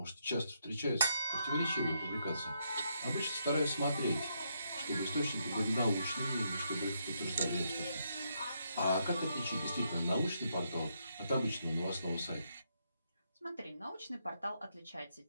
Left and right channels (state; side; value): inverted; both; correlation -0.78